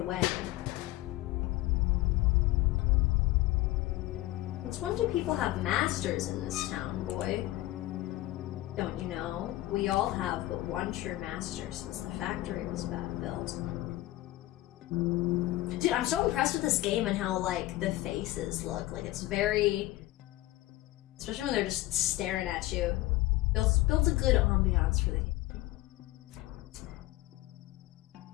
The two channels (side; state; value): right; quieter; 17.2 dB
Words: Since when do people have masters in this town, boy? Don't you know? We all have but one true master since the factory was built. Dude, I'm so impressed with this game and how, like, the faces look. Like, it's very... Especially when they're just staring at you. Builds a good ambiance for the game.